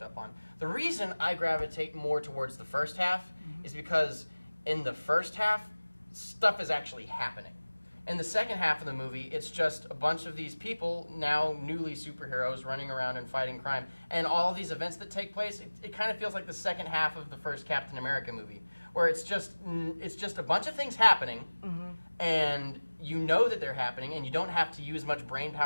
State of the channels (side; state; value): both; inverted; correlation -1.00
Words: up on. The reason I gravitate more towards the first half is because in the first half, stuff is actually happening. In the second half of the movie, it's just a bunch of these people, now newly superheroes, running around and fighting crime. And all these events that take place, it kind of feels like the second half of the first Captain America movie, where it's just a bunch of things happening, and you know that they're happening, and you don't have to use much brain